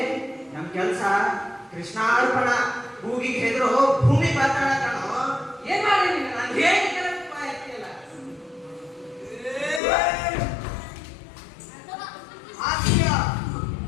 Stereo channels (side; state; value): right; drops out; at 9.8 s